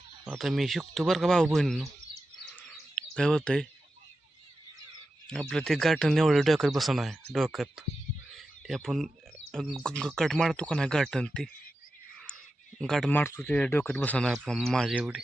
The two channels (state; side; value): normal; both; correlation 0.91